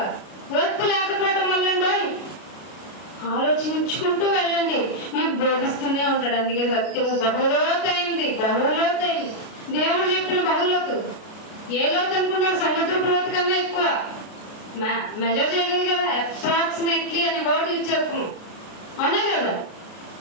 ఓర్పు లేకపోవడం వల్ల ఆలోచించుకుంటూ వెళ్ళండి, మీకు బోధిస్తూనే ఉంటాడు. అందుకే సత్యము బహులోతైంది, బహులోతైంది. దేవుడు చెప్పిన బహులోతు ఏ లోతు అనుకున్నారు? సముద్రపు లోతు కన్నా ఎక్కువ మెజర్ చేయగలరు కదా. అప్రాక్సిమేట్లీ అనే వర్డ్ యూజ్ చేస్తున్నాం, అవునా కదా?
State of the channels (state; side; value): late; right; 32 ms